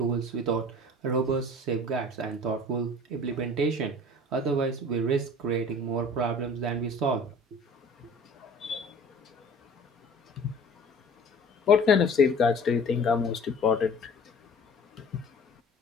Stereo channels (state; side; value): normal; both; correlation 0.45